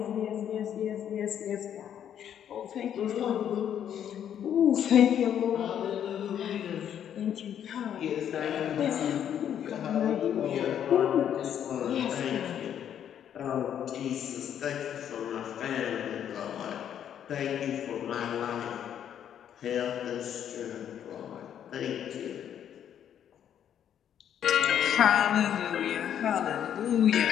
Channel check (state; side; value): quieter; right; 9.5 dB